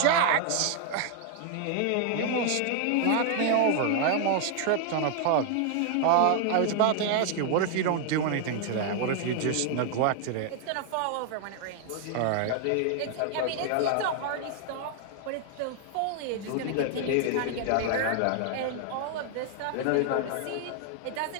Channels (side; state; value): both; different; correlation 0.00